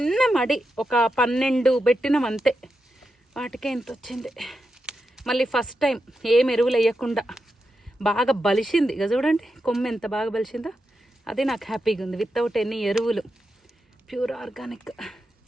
మడి ఒక 12 పెట్టినాం అంతే. వాటికే ఎంత వచ్చింది. మళ్ళీ ఫస్ట్ టైం ఏం ఎరువులు వేయకుండా బాగా బలిసింది. ఇక చూడండి కొమ్మ ఎంత బాగా బలిసిందో. అది నాకు హ్యాపీగా ఉంది. వితౌట్ ఎనీ ఎరువులు, ప్యూర్ ఆర్గానిక్.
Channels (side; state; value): both; normal; correlation 0.87